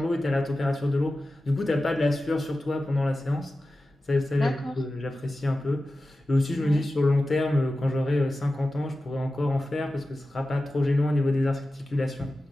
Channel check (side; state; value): both; normal; correlation 0.94